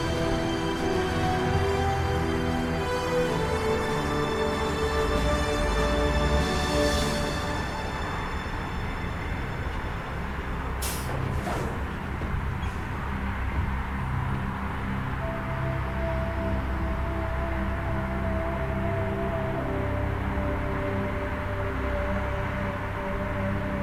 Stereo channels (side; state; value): both; identical; correlation 1.00